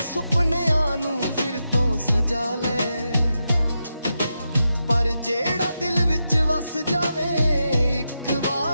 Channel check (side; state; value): both; inverted; correlation -0.87